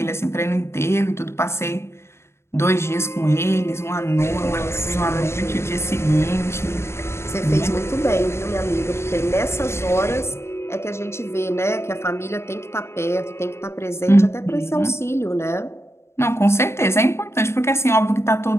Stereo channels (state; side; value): late; right; 0.13 ms